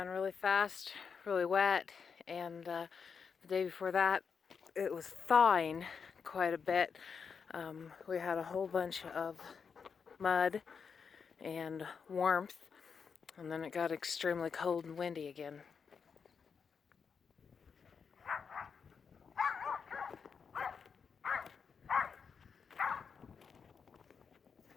really fast, really wet, and the day before that it was thawing quite a bit. We had a whole bunch of mud and warmth, and then it got extremely cold and windy again.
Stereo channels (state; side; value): quieter; right; 6.1 dB